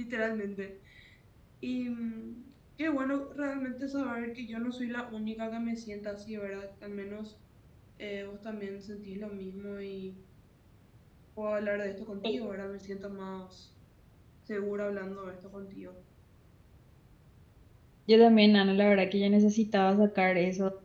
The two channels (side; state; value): both; identical; correlation 1.00